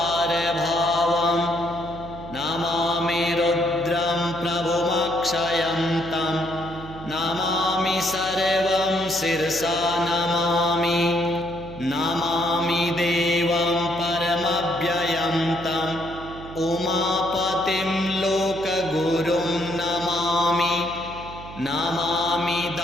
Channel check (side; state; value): right; noise; hum, 15 dB below the sound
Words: सर्वज्ञमपारभावं नमामि रुद्रं प्रभुमक्षयं तं नमामि सर्वं शिरसा नमामि नमामि देवं परमव्ययं तं उमापतिं लोकगुरुं नमामि नमामि